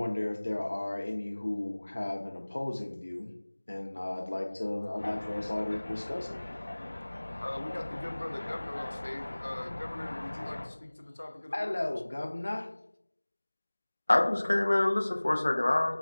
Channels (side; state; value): both; inverted; correlation -1.00